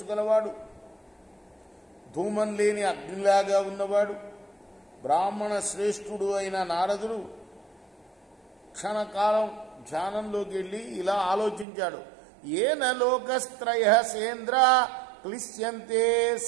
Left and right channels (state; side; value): drops out; left; at 11.7 s